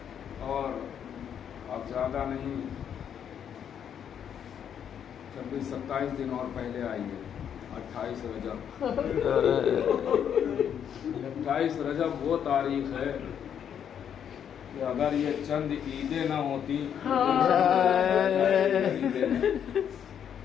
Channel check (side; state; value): right; quieter; 8.7 dB